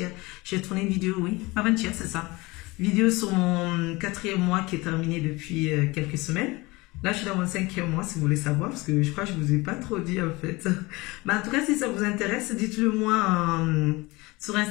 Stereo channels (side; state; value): right; quieter; 22.9 dB